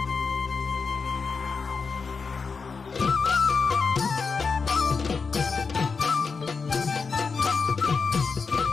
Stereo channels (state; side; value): quieter; right; 5.0 dB